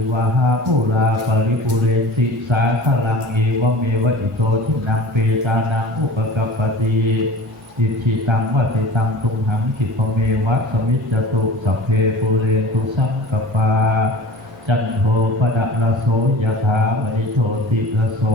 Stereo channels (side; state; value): both; normal; correlation 0.39